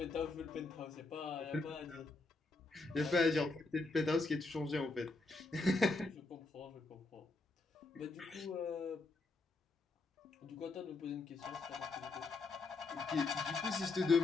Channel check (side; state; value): right; quieter; 3.5 dB